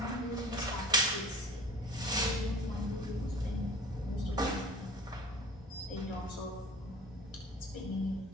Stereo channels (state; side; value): normal; both; correlation 0.42